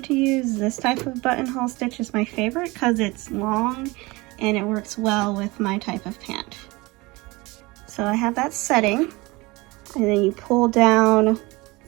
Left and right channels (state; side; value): quieter; left; 23.0 dB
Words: to use this type of buttonhole stitch as my favorite because it's long and it works well with my type of pant. So I have that setting, and then you pull down